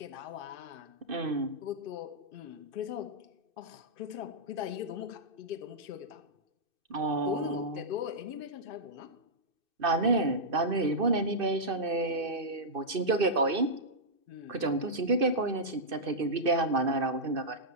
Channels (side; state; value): left; late; 2.6 ms